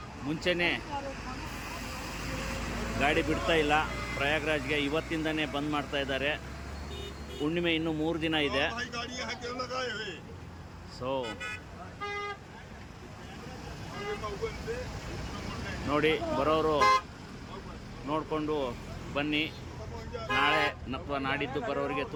ಮುಂಚೆನೇ ಗಾಡಿ ಬಿಡ್ತಾ ಇಲ್ಲ. ಪ್ರಯಾಗ್ರಾಜ್ಗೆ ಇವತ್ತಿಂದನೇ ಬಂದ್ ಮಾಡ್ತಾ ಇದ್ದಾರೆ. ಹುಣ್ಣಿಮೆ ಇನ್ನೂ 3 ದಿನ ಇದೆ. ಸೊ ನೋಡಿ, ಬರೋರು ನೋಡಿಕೊಂಡು ಬನ್ನಿ. ನಾಳೆ ಅಥವಾ ನಾಡಿದ್ದು ಬರೋರಿಗೆ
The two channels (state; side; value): identical; both; correlation 1.00